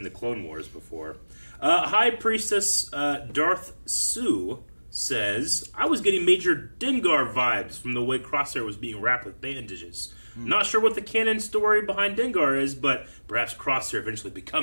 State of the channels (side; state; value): both; inverted; correlation -1.00